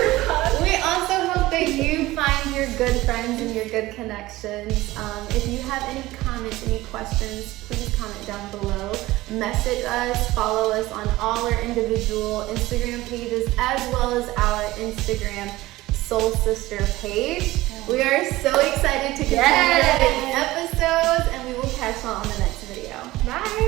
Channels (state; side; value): quieter; left; 18.0 dB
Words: we also hope that you find your good friends and your good connections. If you have any comments, any questions, please comment down below. Message us, follow us on all our individual Instagram pages as well as our Instagram Soul Sister page. We are so excited to continue the episodes, and we will catch you on the next video.